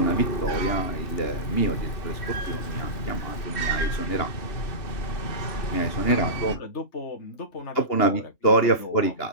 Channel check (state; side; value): late; right; 2.9 ms